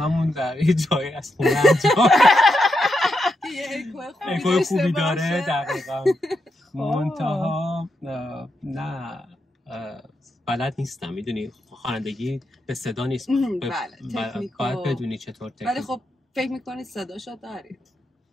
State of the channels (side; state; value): both; normal; correlation 0.84